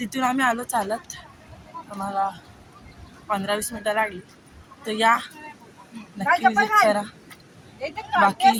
आम्ही आलो चालत. आम्हाला 15-20 मिनटं लागली. तर या नक्की विजिट करा. बाकी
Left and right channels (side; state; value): both; identical; correlation 1.00